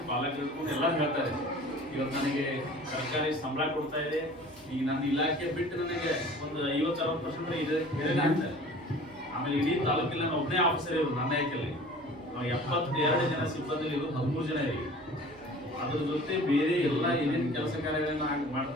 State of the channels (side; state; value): right; noise; hum, 29 dB below the sound